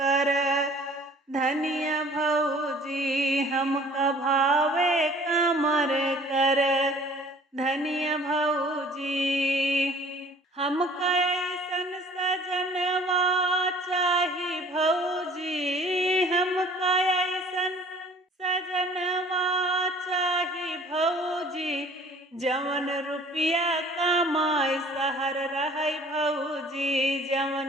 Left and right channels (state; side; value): normal; both; correlation 0.52